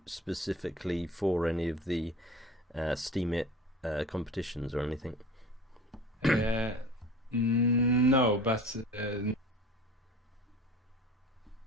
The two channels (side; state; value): both; normal; correlation 0.40